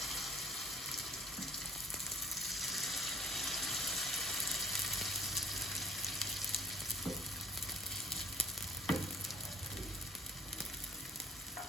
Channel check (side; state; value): both; normal; correlation 0.55